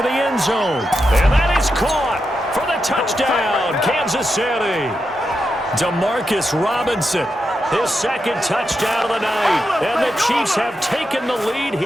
the end zone. And that is caught for the touchdown, Kansas City. Demarcus Robinson, his 2nd touchdown of the night. And the Chiefs have taken the lead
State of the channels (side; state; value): both; normal; correlation 0.87